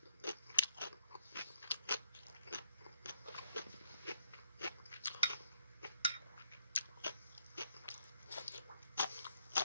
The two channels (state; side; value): inverted; both; correlation -0.75